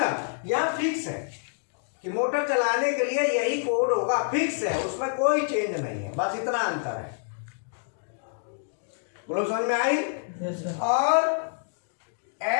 ना? यहाँ फिक्स है कि मोटर चलाने के लिए यही कोड होगा, फिक्स है, उसमें कोई चेंज नहीं है, बस इतना अंतर है। बोलो, समझ में आई? yes, और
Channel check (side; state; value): right; silent; digital silence